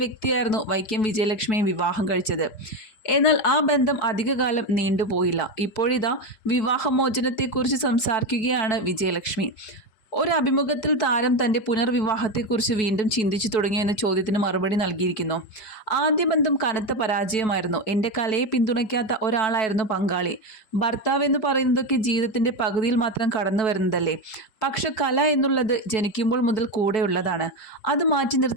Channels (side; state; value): right; late; 4.6 ms